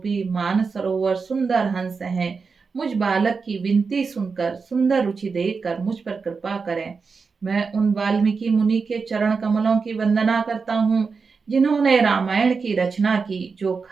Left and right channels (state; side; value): quieter; left; 4.9 dB